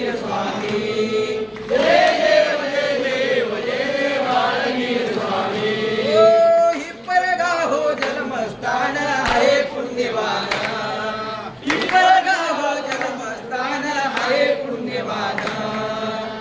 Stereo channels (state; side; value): identical; both; correlation 1.00